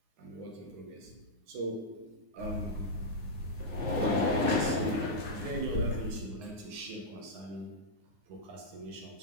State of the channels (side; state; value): left; late; 9.6 ms